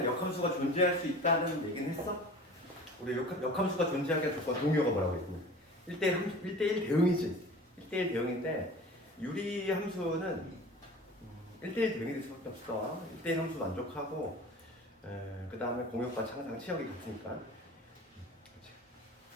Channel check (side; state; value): both; normal; correlation 0.40